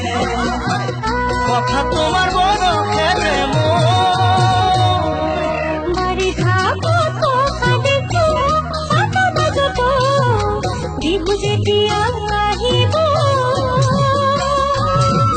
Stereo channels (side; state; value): both; identical; correlation 1.00